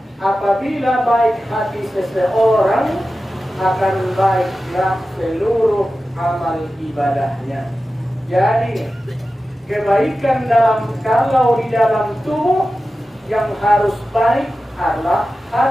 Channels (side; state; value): both; normal; correlation 0.94